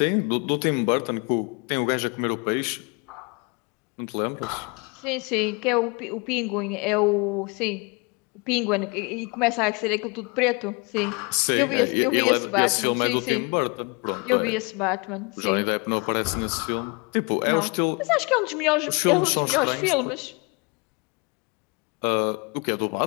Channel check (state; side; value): quieter; right; 30.2 dB